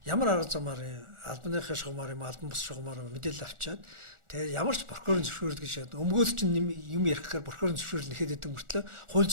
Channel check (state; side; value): late; left; 1.4 ms